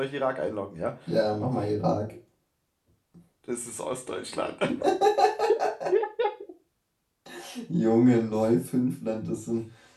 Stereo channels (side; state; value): both; identical; correlation 1.00